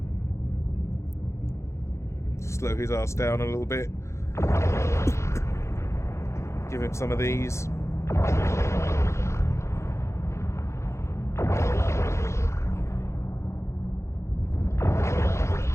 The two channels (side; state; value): right; late; 0.14 ms